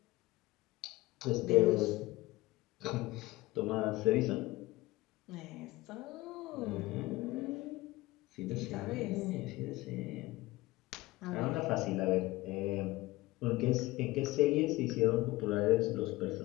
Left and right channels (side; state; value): right; quieter; 19.5 dB